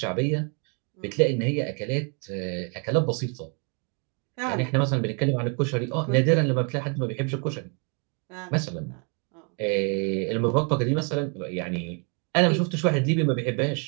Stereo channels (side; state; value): left; quieter; 37.4 dB